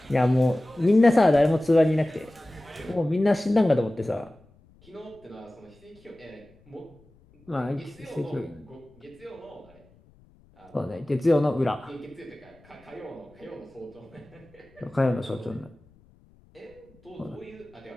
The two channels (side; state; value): left; noise; rumble, 29 dB below the sound